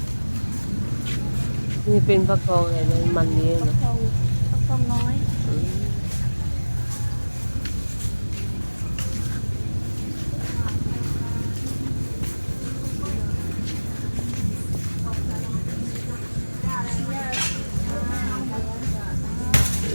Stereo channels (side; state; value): both; inverted; correlation -1.00